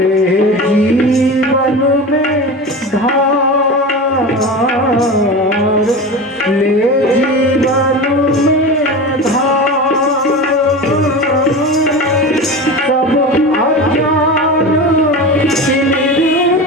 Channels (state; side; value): normal; both; correlation 0.28